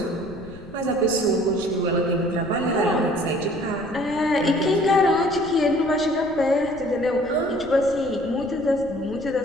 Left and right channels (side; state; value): left; noise; rumble, 20 dB below the sound